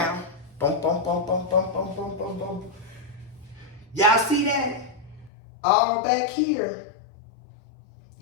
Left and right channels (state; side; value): drops out; right; at 5.3 s